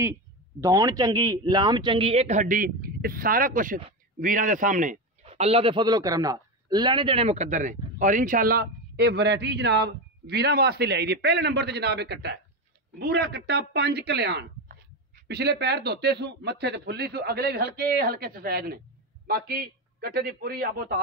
दौड़ चंगी लाम चंगी एक हड्डी ये सारा कुछ वीरां दे सामने अल्लाह के फजलो करम नाल लेने देने मुकद्दर ने। और इंशाल्लाह ये वैरायटी जनाब वीरां वास्ते लाई दी। पहले नंबर पर जनाब एक कट्टा है बूरा कट्टा 5 कल्याण पिछले पैर धोते सू मत्थे ते फुल्ली सू अगले भी हल्के हल्के सफेद ने बाकी कट्टे की पूरी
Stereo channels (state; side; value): normal; both; correlation 0.16